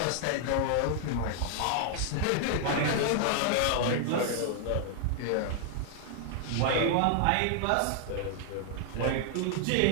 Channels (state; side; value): different; both; correlation 0.00